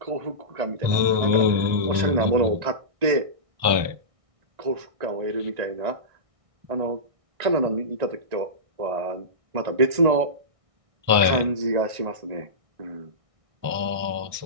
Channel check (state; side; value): late; left; 1.6 ms